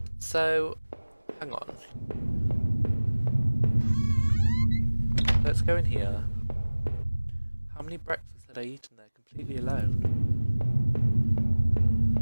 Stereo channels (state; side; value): inverted; both; correlation -1.00